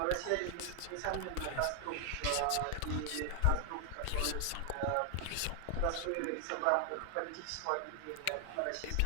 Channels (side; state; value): both; different; correlation 0.00